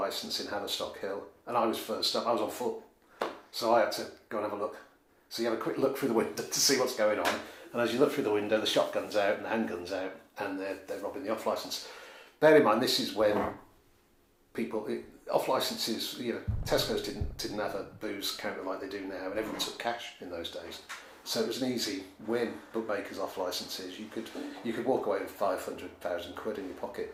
in Haverstock Hill, and I was first up. I was on foot, so I had to go and have a look. So you have a quick look through the window to see what's going on, and as you look through the window, the shotgun's out and the handgun's out, and they're robbing the off licence. Bear in mind, this is when off licences, Tesco's didn't have a booze counter like they do now, and everyone took cash in those days. So it was an easy win. Bookmakers off licences, you could walk away with 500,000 quid in your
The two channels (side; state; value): both; identical; correlation 1.00